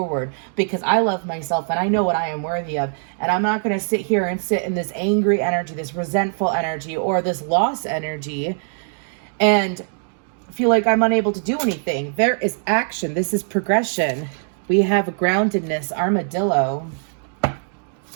because I love myself and I know what I am worthy of. And I'm not going to sit here and sit in this angry energy, this resentful energy, or this loss energy and feel like I'm unable to do anything. There is action. This is progression. We have groundedness, armadillo.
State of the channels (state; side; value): silent; left; digital silence